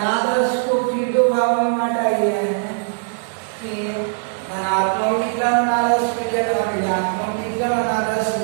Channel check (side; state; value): left; silent; 65 dB below the other